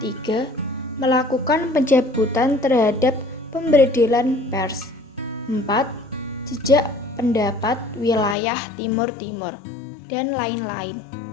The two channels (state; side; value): drops out; right; at 8.3 s